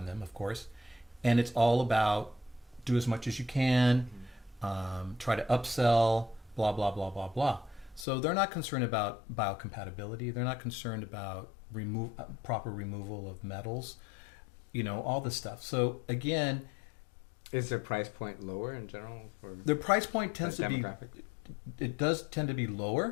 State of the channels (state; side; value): drops out; right; at 8.1 s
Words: them, of course. And it's all about do as much as you can, try to upsell, blah, blah, blah, blah, blah. So they're not concerned about biocompatibility. They're not concerned about proper removal of metals, all this stuff. So again, is their price point lower in general? The price point tends to be, it does tend to be